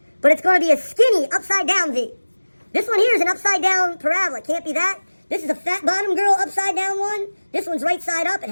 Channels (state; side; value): inverted; both; correlation -1.00